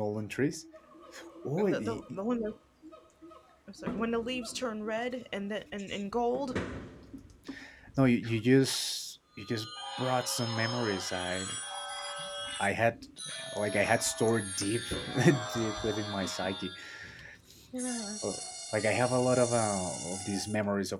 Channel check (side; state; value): both; identical; correlation 1.00